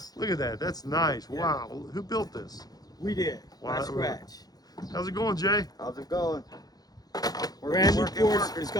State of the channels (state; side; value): late; right; 0.19 ms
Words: Look at that. That's nice. Yeah. Wow. Who built this? We did. Wow. From scratch. How's it going, Jay? How's it going? Brand new porch is